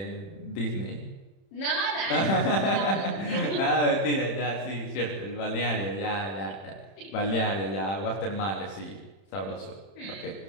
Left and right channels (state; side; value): late; right; 31 ms